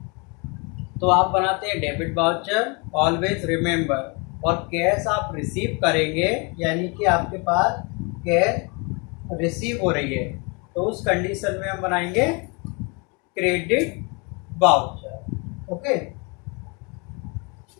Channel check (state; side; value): quieter; right; 31.2 dB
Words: तो आप बनाते हैं डेबिट वाउचर. ऑलवेज रिमेंबर, और कैश आप रिसीव करेंगे यानी कि आपके पास कैश रिसीव हो रही है, तो उस कंडीशन में हम बनाएंगे क्रेडिट वाउचर. ओके,